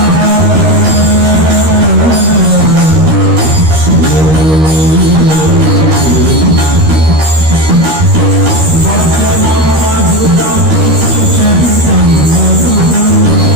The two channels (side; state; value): left; late; 13 ms